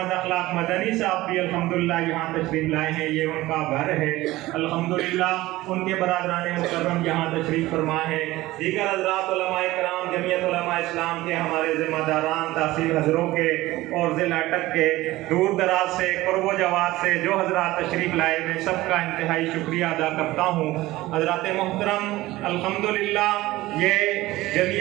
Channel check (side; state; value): left; quieter; 17.8 dB